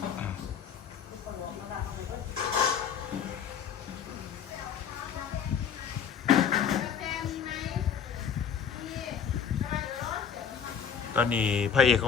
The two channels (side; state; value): right; quieter; 7.5 dB